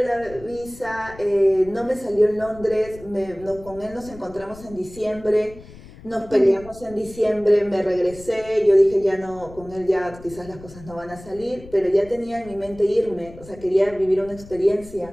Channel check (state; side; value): noise; left; rumble, 19 dB below the sound